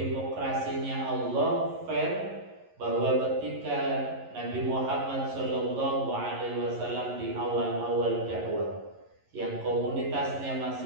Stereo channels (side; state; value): left; late; 11 ms